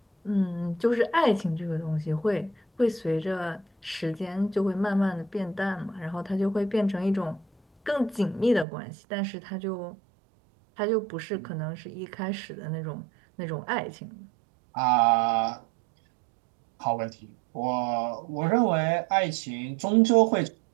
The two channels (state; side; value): drops out; left; at 8.7 s